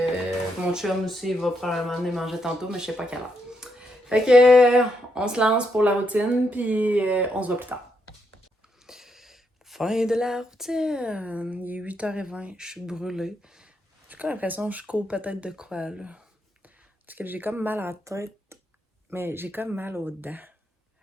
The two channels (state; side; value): normal; both; correlation 0.79